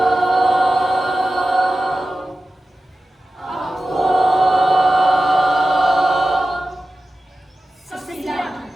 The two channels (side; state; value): both; normal; correlation 0.95